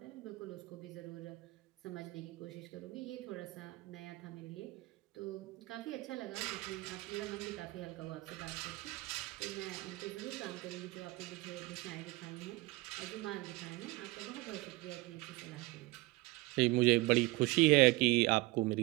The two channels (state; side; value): quieter; left; 21.8 dB